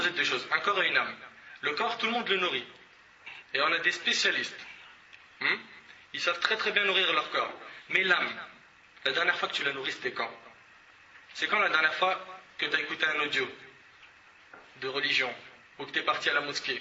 de deux choses. Un corps et une âme. Le corps, tout le monde le nourrit. Et on a des spécialistes. Ils savent très très bien nourrir leur corps. Mais l'âme, la dernière fois que tu l'as nourrie, c'était quand? C'est quand la dernière fois que tu as écouté un audio de religion, ou que tu es parti à la mosquée,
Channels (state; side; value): identical; both; correlation 1.00